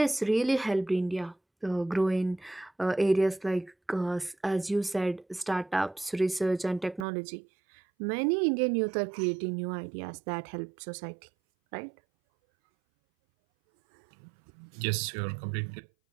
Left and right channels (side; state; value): left; drops out; at 7.1 s